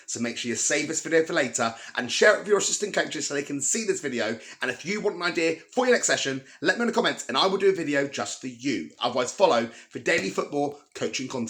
So make sure you save this video for later and share it with your assistant coaches so they can see this video. And if you want an idea for your next session, let me know in the comments and I will do a video just for you. Otherwise, follow for daily football coaching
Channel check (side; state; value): both; identical; correlation 1.00